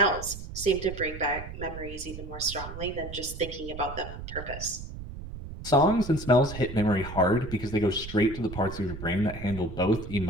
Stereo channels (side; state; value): right; noise; rumble, 10 dB below the sound